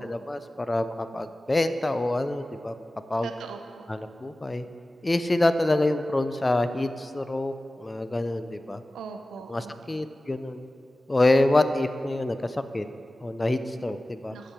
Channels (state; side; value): normal; both; correlation 0.96